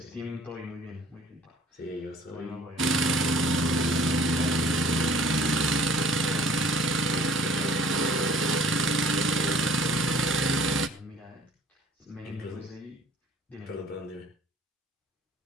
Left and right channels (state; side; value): normal; both; correlation 0.53